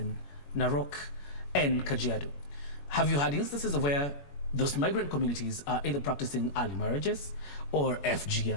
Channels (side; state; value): right; late; 21 ms